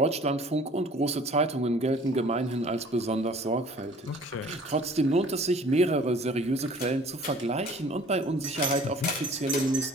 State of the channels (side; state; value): both; normal; correlation 0.51